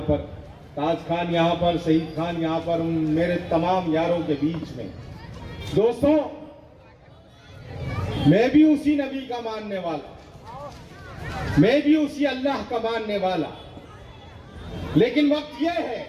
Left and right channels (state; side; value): identical; both; correlation 1.00